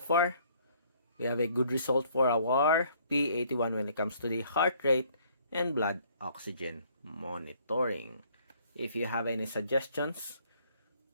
we have a good result for our P81 when it comes to the heart rate and blood oxygen monitoring. If you have any suggestions,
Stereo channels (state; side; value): inverted; both; correlation -0.61